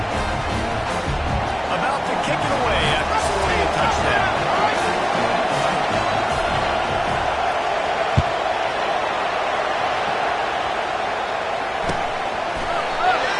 About to kick it away after scoring a touchdown.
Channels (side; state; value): both; identical; correlation 1.00